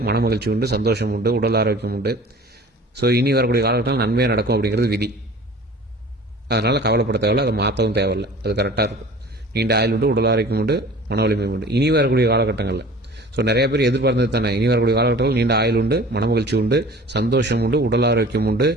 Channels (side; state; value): both; normal; correlation 0.43